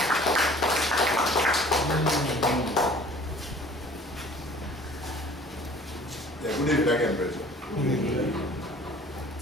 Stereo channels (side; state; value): both; normal; correlation 0.50